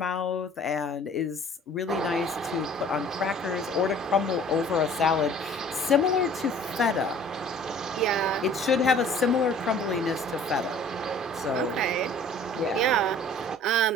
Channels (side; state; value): both; normal; correlation 0.50